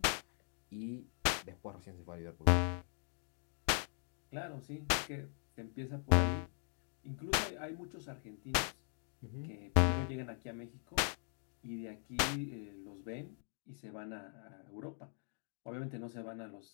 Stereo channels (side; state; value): right; silent; 50 dB below the other